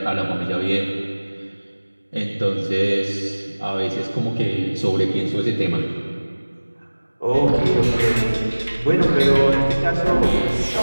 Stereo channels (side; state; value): both; inverted; correlation -1.00